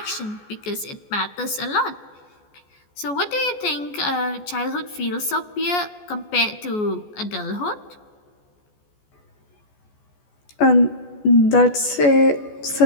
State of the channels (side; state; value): right; late; 14 ms